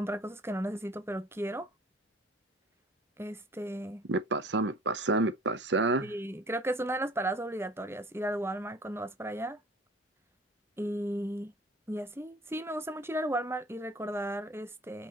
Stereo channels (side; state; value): both; normal; correlation 0.48